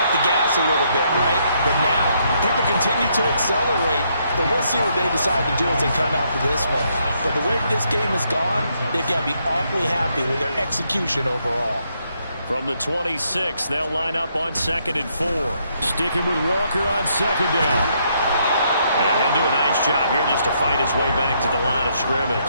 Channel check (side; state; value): both; inverted; correlation -0.74